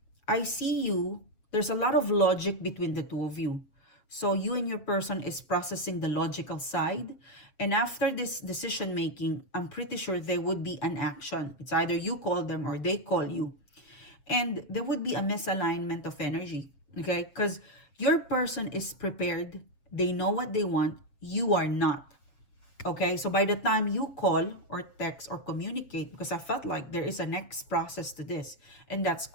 I see you, there's a lot of logic between the two of you. So you and your person is processing the logical side. And after this decision making, I'm pretty sure there would be an action. It's either you call them or they call you. And there would be a misalignment of energy. Okay? Because your person is prepared. They know what they want. You are not. Okay? So by the time you call or text or communicate, because I felt like there is a next process to this, and that's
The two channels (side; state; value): right; late; 7.2 ms